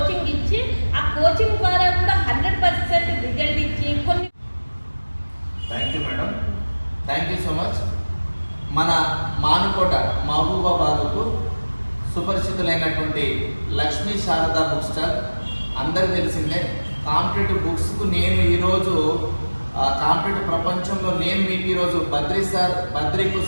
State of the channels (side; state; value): both; inverted; correlation -1.00